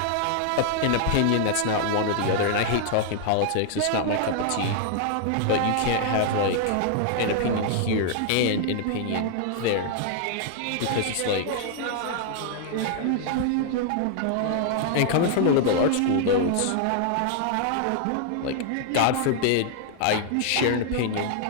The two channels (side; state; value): both; different; correlation 0.00